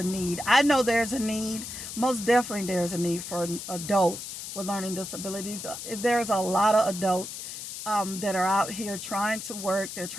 need. I know there's a need. Most definitely there's a need for adults with learning disabilities. There's a lot of adults that are out here trying to work. They're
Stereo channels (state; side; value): noise; left; hiss, 8 dB below the sound